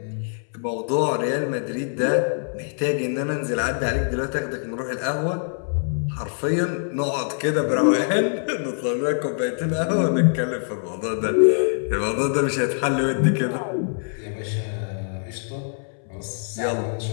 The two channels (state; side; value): silent; right; 62 dB below the other